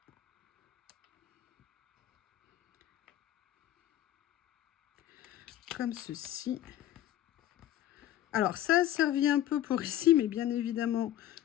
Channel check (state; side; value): quieter; right; 13.0 dB